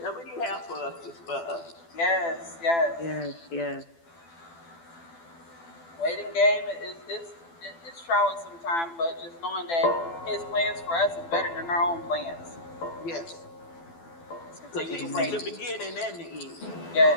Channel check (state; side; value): late; right; 12 ms